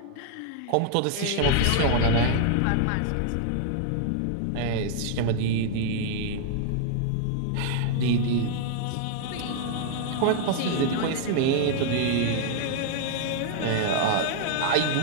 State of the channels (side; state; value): both; different; correlation 0.00